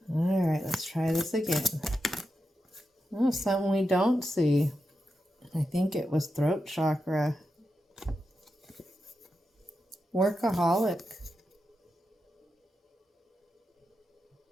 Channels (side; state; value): both; normal; correlation 0.88